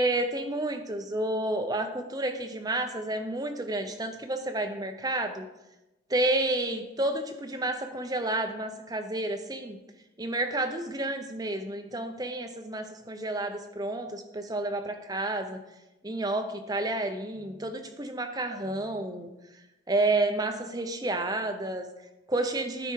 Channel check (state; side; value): normal; both; correlation 0.36